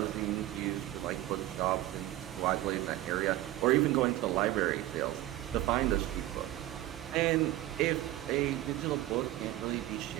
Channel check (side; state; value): left; quieter; 15.4 dB